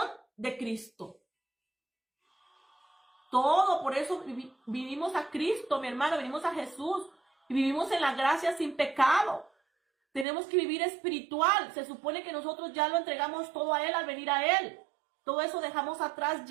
de Cristo. Todo, por eso vivimos a Cristo, mi hermano, venimos a Jesús. Y vivimos en la gracia sin pecado. Tenemos que vivir espiritual. Se supone que nosotros ya lo entregamos todo a Él al venir a Él. Todo eso dejamos atrás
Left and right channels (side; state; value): left; drops out; at 10.2 s